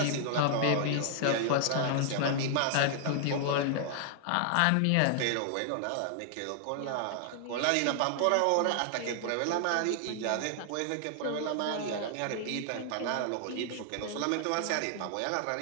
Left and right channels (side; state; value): both; different; correlation -0.01